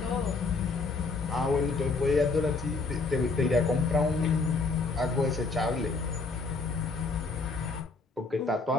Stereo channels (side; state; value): right; quieter; 4.0 dB